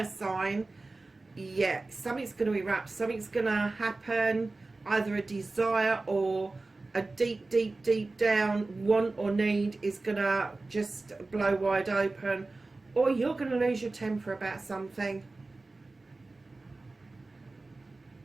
sign, yeah, something's going to erupt, something's going to happen, either a desire or a deep down want or need is going to just blow wide open, or you're going to lose your temper about something.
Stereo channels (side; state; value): left; quieter; 3.3 dB